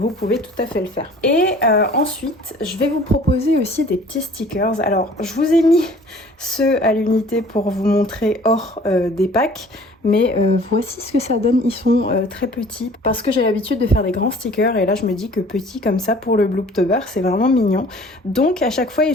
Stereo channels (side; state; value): both; normal; correlation 0.50